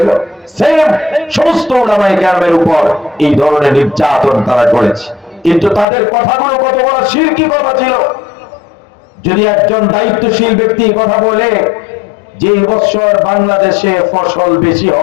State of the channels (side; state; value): right; drops out; at 5.9 s